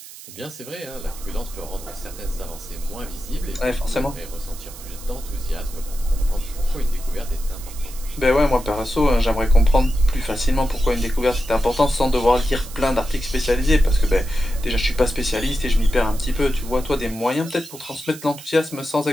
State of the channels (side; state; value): right; noise; hiss, 16 dB below the sound